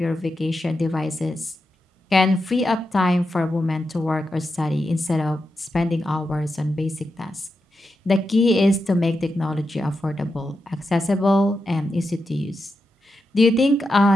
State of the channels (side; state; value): both; normal; correlation 0.88